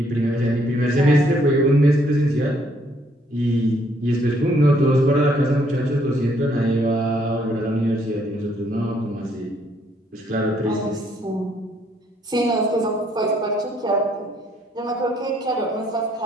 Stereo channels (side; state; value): both; normal; correlation 0.68